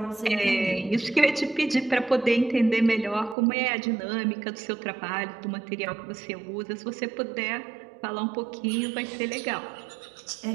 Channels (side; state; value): left; drops out; at 3.4 s